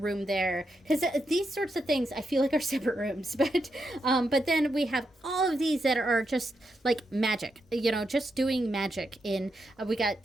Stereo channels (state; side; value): normal; both; correlation 0.83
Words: there. Because these sorts of things I feel like are separate rooms. But then we have all of these that are just like magic, just doing magic we